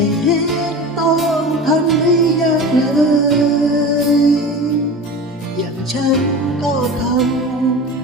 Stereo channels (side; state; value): both; normal; correlation 0.33